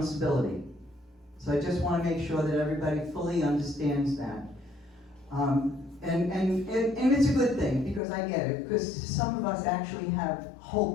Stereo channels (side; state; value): right; drops out; at 8.0 s